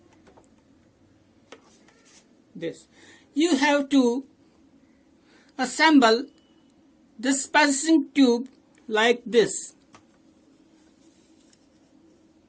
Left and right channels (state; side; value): identical; both; correlation 1.00